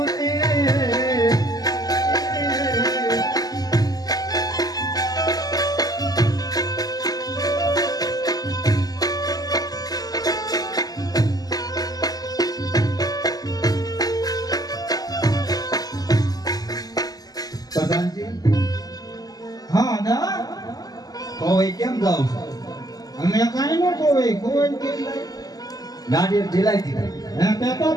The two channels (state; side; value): late; right; 0.18 ms